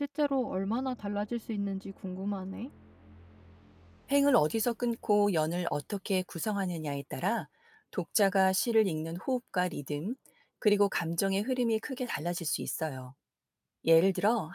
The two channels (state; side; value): identical; both; correlation 1.00